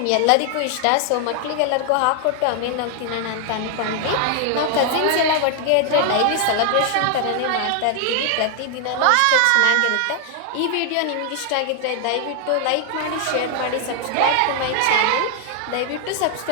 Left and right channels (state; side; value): different; both; correlation 0.00